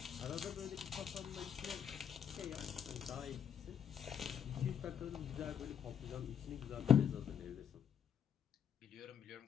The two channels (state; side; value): quieter; right; 8.4 dB